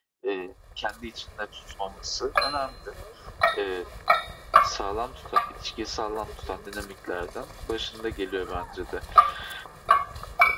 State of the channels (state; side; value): identical; both; correlation 1.00